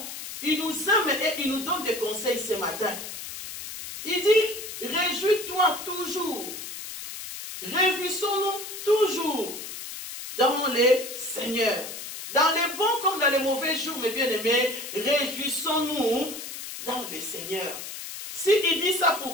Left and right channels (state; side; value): noise; left; hiss, 9 dB below the sound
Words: Il nous aime et il nous donne des conseils ce matin. Il dit, réjouis-toi toujours. Réjouissons-nous toujours dans les Seigneurs. Dans les bons comme dans les mauvais jours, mes bien-aimés, réjouissons-nous dans les Seigneurs. S'il dit ça,